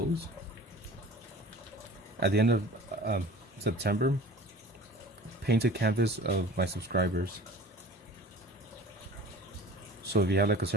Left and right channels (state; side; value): normal; both; correlation 0.42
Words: At the end of September, paint a canvas of my subscribers. So if you have like a